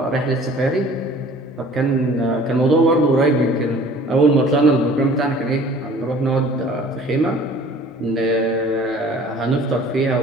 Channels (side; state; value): both; normal; correlation 0.49